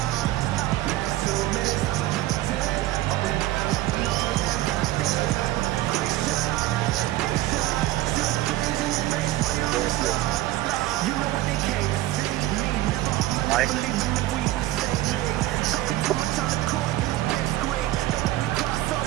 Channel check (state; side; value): quieter; left; 15.9 dB